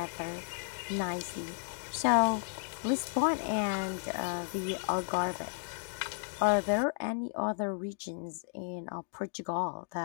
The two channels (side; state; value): right; silent; digital silence